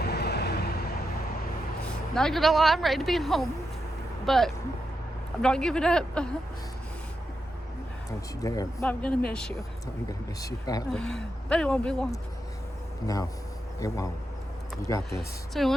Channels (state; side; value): normal; both; correlation 0.86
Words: Not going to lie, I'm ready to be home. But I'm not giving up. Don't you dare. But I'm going to miss you. I'm going to miss you badly. But it won't be long. No, it won't. You got this. So I